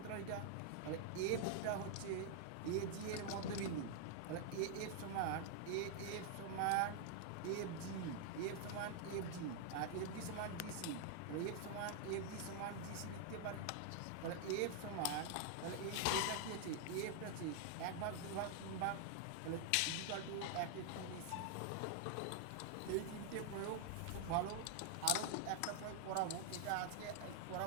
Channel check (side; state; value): both; different; correlation 0.00